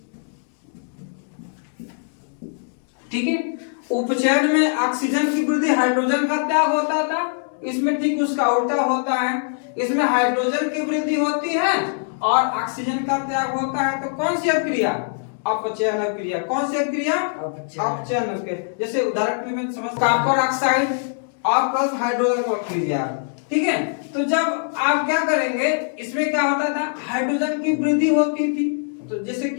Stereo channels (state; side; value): silent; right; digital silence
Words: ठीक है। उपचयन में ऑक्सीजन की वृद्धि, हाइड्रोजन का त्याग होता था, इसमें ठीक उसका उल्टा होता है, इसमें हाइड्रोजन की वृद्धि होती है और ऑक्सीजन का त्याग होता है। तो कौन सी अभिक्रिया, अपचयन अभिक्रिया। कौन सी अभिक्रिया, अपचयन अभिक्रिया। जैसे उदाहरण के लिए मैं समझ, कॉपर ऑक्साइड और प्लस हाइड्रोजन को अभिक्रिया, ठीक है। तो जब आप क्या करेंगे, इसमें क्या होता था, हाइड्रोजन की वृद्धि होती थी, तो जैसे